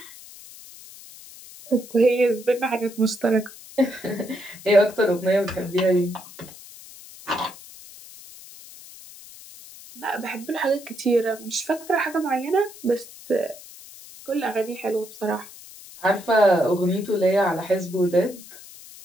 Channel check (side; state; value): left; noise; hiss, 18 dB below the sound